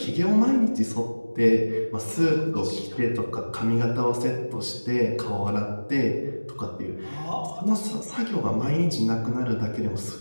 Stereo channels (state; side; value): inverted; both; correlation -1.00